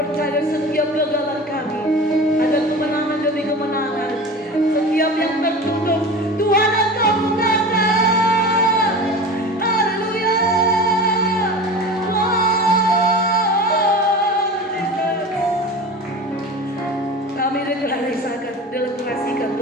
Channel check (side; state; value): both; normal; correlation 0.33